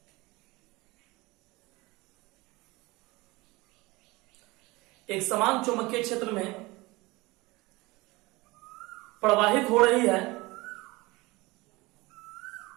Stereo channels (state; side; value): quieter; left; 22.2 dB